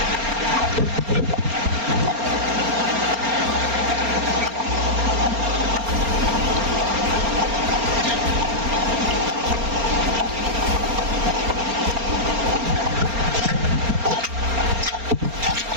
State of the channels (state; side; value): late; left; 4.3 ms